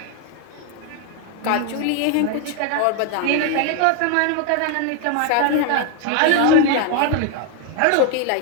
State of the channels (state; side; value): different; both; correlation 0.00